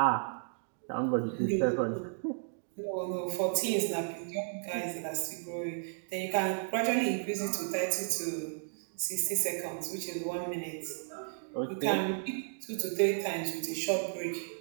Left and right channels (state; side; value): silent; left; digital silence